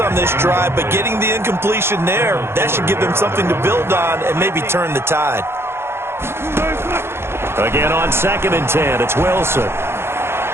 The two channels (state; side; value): late; left; 0.12 ms